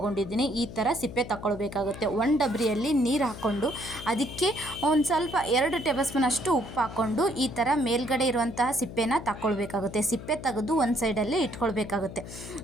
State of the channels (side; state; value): left; noise; hum, 12 dB below the sound